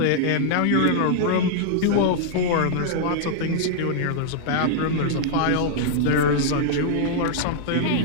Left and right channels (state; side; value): different; both; correlation -0.01